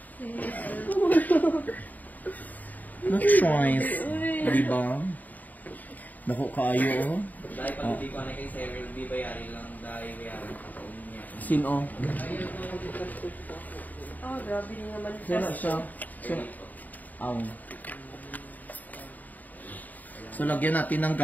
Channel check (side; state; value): right; late; 0.081 ms